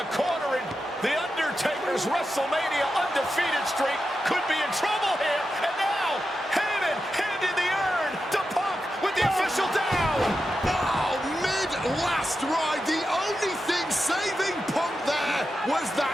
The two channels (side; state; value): both; normal; correlation 0.90